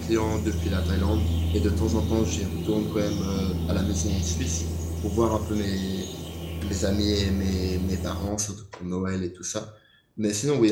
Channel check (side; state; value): both; identical; correlation 1.00